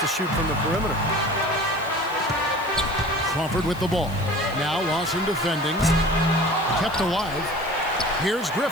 shoot from the perimeter. Crawford with the ball. Now Lawson defending. Kept alive. Here's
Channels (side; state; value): left; noise; hiss, 21 dB below the sound